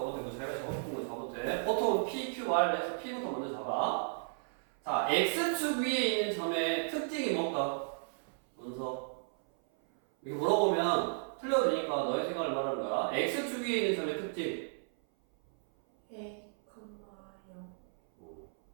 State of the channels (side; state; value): left; silent; 55 dB below the other